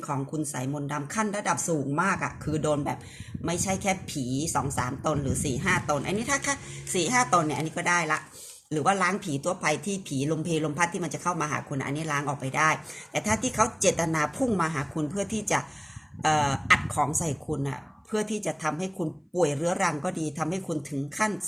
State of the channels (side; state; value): both; identical; correlation 1.00